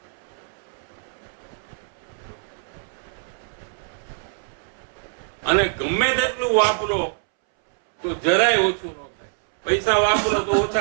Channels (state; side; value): silent; left; 62 dB below the other